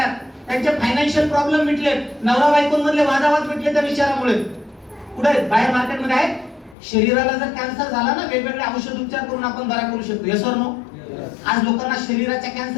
त्यांचे फायनान्शियल प्रॉब्लेम मिटले, नवरा बायकोंमधले वादावाद मिटले त्या विचारामुळे. कुठे? बाहेर मार्केटमध्ये आहे. शरीराला जर कॅन्सर झाला ना, वेगवेगळे औषध उपचार करून आपण बरा करू शकतो. Yes or no? आज लोकांना शरीराच्या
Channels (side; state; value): right; drops out; at 6.8 s